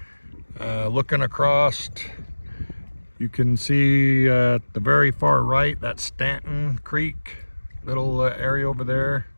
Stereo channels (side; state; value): both; inverted; correlation -1.00